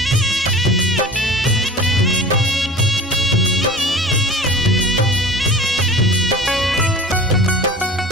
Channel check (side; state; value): both; normal; correlation 0.37